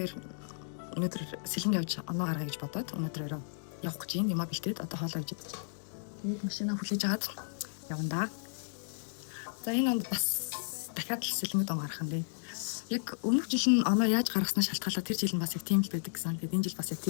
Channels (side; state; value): right; silent; digital silence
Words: өнөөдөр сэлэнд явж оноо гаргая гэж бодоод өнөөдөр явах гэж юм а бэлтээд одоо хоолоо хийж идэж. Тэгээд машинаа хүлээж агаад явна да. За энэ онд бас дахиад л сэлэнгд он гарах юм бэ. Яг өмнөх жил нь оноо яаж гаргаснаа шалтгаалаад тэр жил нь бас яг тийм л байдаг гэсэн. Тэгээд энэ жил бас яг